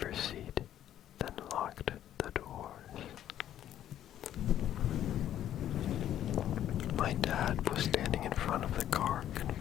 seat, then locked the doors. My dad was standing in front of the car,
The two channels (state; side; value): quieter; right; 11.4 dB